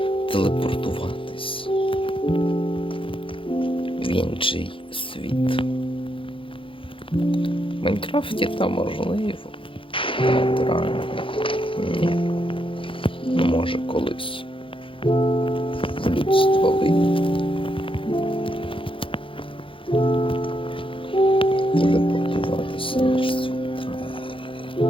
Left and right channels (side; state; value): right; late; 0.25 ms